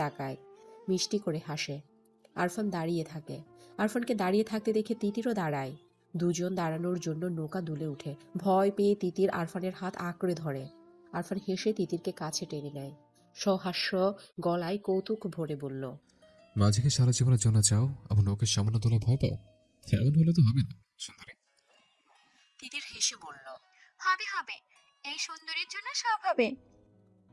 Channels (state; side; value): identical; both; correlation 1.00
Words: তাকায়, মিষ্টি করে হাসে। আরফান দাঁড়িয়ে থাকে। আরফানকে দাঁড়িয়ে থাকতে দেখে তিতিরও দাঁড়ায়। দুজন দাঁড়ানোর জন্য নৌকা দুলে উঠে। ভয় পেয়ে তিতির আরফানের হাত আঁকড়ে ধরে। আরফান হেসে তিতিরকে কাছে টেনে নেয়, সহাস্য গলায় কৌতুক ভরে বলল, মাঝিকে সারা জীবনের জন্য চাও, আবার নৌকের সামান্য তোলা ভয় পাও? এমন হলে তো হবে না সুন্দরী। তিতির হেসে বলল, হবে হবে, এই সুন্দরীর জন্য সব হবে।